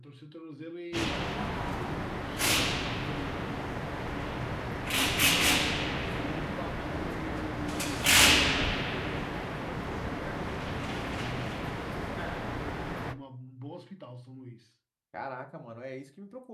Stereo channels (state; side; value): identical; both; correlation 1.00